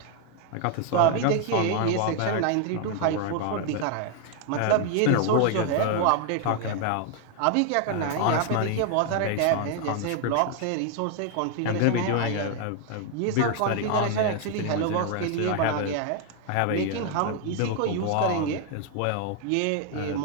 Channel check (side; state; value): both; different; correlation 0.00